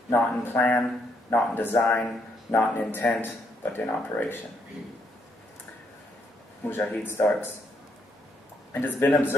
Not in plan, not in design, not in intent, but in operation. Mujahid starts. It has been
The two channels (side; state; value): both; normal; correlation 0.74